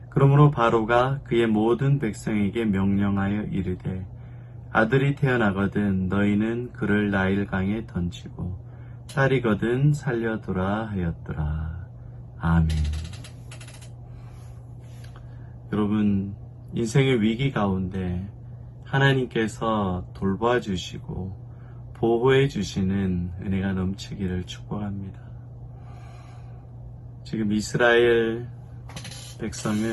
그러므로 바로가 그의 모든 백성에게 명령하여 이르되 아들이 태어나거든 너희는 그를 나일강에 던지고 딸이거든 살려두라 하였더라. 아멘. 여러분, 인생의 위기 가운데 하나님께서 돌봐주시고 보호해 주시는 은혜가 넘치기를 축복합니다. 지금 이스라엘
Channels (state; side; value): identical; both; correlation 1.00